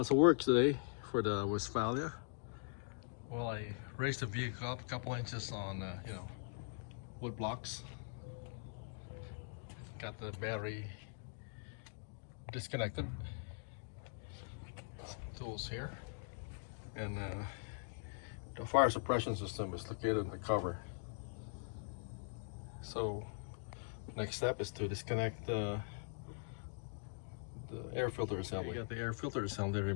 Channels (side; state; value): right; silent; digital silence